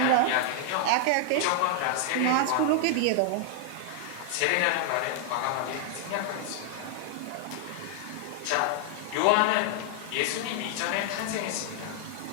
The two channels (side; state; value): both; different; correlation 0.00